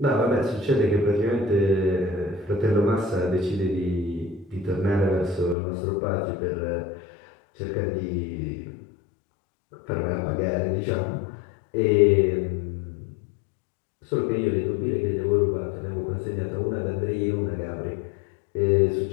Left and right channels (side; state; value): right; drops out; at 5.6 s